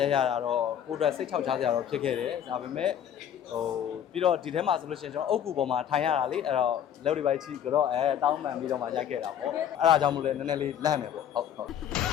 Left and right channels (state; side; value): quieter; right; 9.5 dB